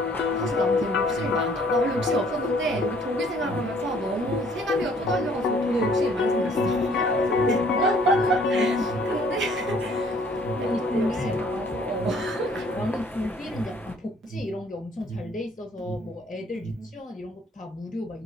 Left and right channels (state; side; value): normal; both; correlation 0.59